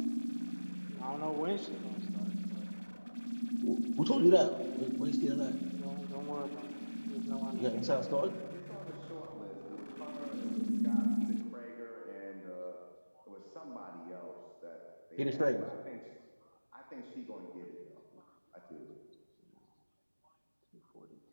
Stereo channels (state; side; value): inverted; both; correlation -1.00